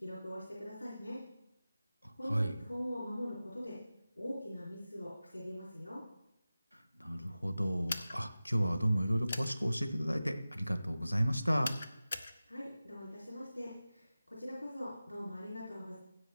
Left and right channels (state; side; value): inverted; both; correlation -0.95